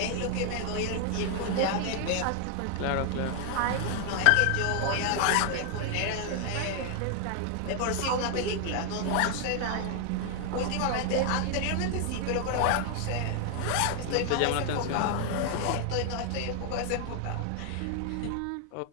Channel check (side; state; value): both; different; correlation 0.00